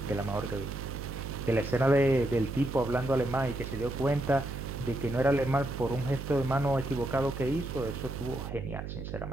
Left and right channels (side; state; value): right; noise; hum, 7 dB below the sound